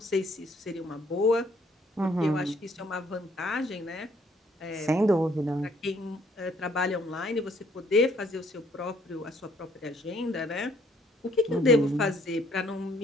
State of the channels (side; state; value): both; normal; correlation 0.64